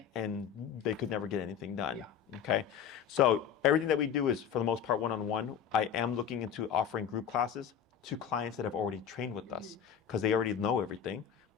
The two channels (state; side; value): quieter; right; 8.3 dB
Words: and they could never get anything done. Okay, so everything that we do is for the most part one-on-one. I am looking into offering group classes to clients that have already trained with us because they already know everything.